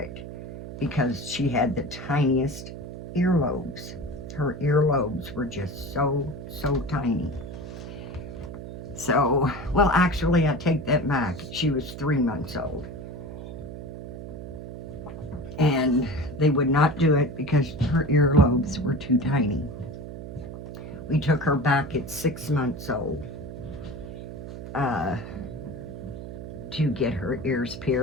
because she had the tiniest earlobes. Her earlobes were just so tiny. So, well, actually, I take that back. She was 3 months old. And they would not do it because her earlobes were too tiny. We took her back at 6 months old to get her ears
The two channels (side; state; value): right; noise; hum, 10 dB below the sound